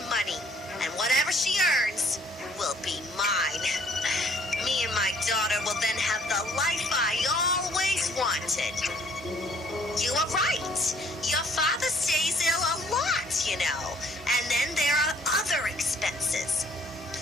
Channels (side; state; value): both; normal; correlation 0.61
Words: money, and whatever she earns will be mine. Me and my daughter will then have the life I always wanted. You are right. Your father stays ill a lot, you know, and then there are other expenses.